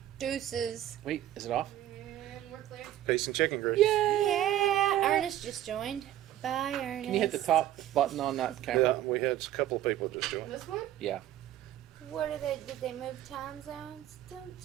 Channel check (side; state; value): left; quieter; 12.8 dB